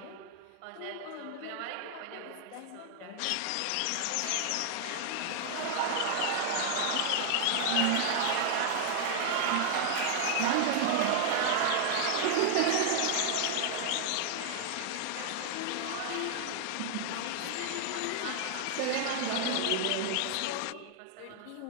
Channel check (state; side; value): different; both; correlation 0.00